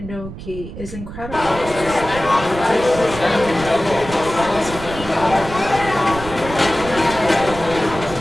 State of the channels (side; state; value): right; noise; rumble, 11 dB below the sound